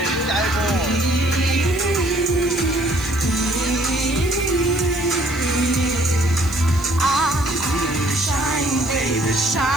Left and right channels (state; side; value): noise; right; hiss, 19 dB below the sound